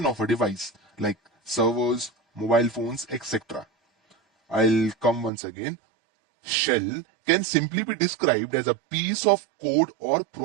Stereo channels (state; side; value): drops out; left; at 5.3 s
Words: of a device like servers, mobile phones, etc. I'll come once again. Shell can simply be described as a piece of code or